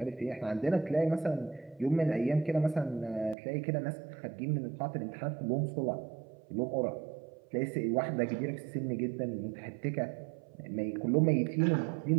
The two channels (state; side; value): drops out; left; at 3.4 s